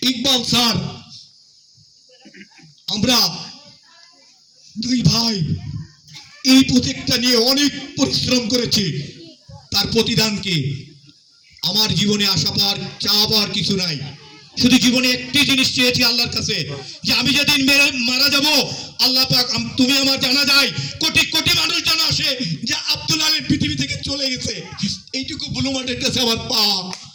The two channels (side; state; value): both; identical; correlation 1.00